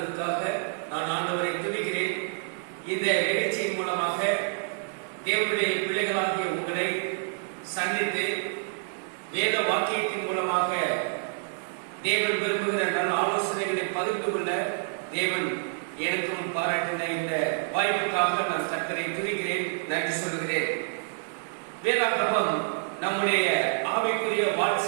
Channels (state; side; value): silent; left; digital silence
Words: நான் ஆண்டவரை துதிக்கிறேன். இந்த நிகழ்ச்சியின் மூலமாக தேவனுடைய பிள்ளைகளாகிய உங்களை சந்தித்து வேத வாக்கியத்தின் மூலமாக தேவன் விரும்புகிற நல்ல ஆலோசனைகளை பகிர்ந்து கொள்ள தேவன் எனக்கும் பாராட்டின இந்த வாய்ப்புக்காக நான் கர்த்தரை துதிக்கிறேன், நன்றி சொல்கிறேன். வேதாகமம் நம்முடைய ஆவிக்குரிய